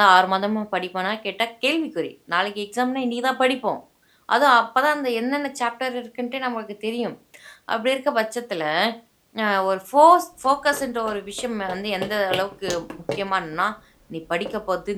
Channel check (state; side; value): identical; both; correlation 1.00